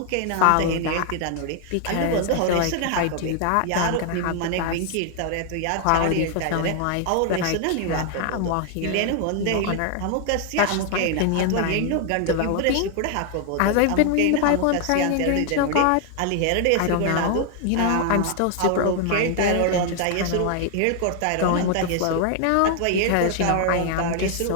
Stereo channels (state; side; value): different; both; correlation 0.00